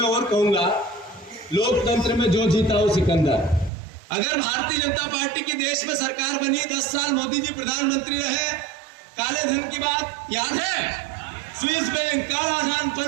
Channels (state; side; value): drops out; left; at 3.7 s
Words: और कहूंगा, लोकतंत्र में जो जीता हो सिकंदर। अगर भारतीय जनता पार्टी की देश में सरकार बनी, 10 साल मोदी जी प्रधानमंत्री रहे, काले धन की बात याद है, स्विस बैंक काला धन